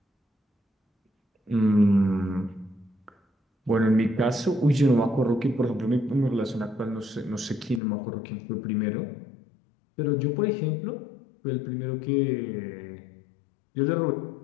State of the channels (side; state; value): right; drops out; at 7.8 s